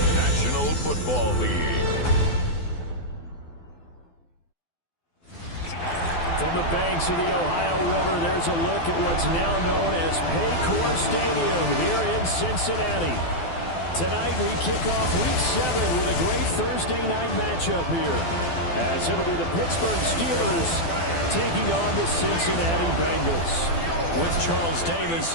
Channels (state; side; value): late; right; 12 ms